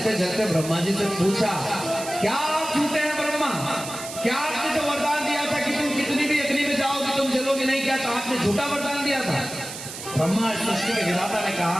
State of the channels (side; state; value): right; noise; hiss, 10 dB below the sound